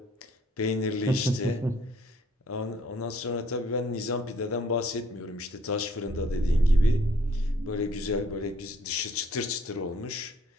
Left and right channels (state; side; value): normal; both; correlation 0.62